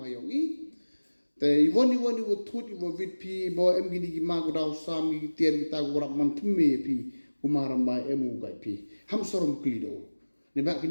hayongi. The one you would thought you were with P. Bo em gini magudao sami tier kita gurap mantume P. Umaram by emu gai P. Ham sorom klido. Nebak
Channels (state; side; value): inverted; both; correlation -1.00